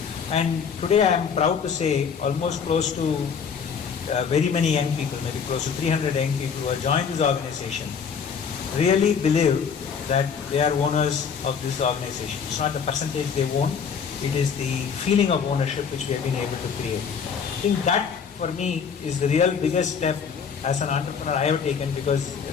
And today I am proud to say almost close to very many young people, maybe close to 300 young people who have joined this organization, really believe that they are owners of this organization. It's not the percentage they own, it is the feeling of ownership which we have been able to create. I think that for me is the real biggest step as an entrepreneur I have taken, because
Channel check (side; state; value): right; quieter; 6.6 dB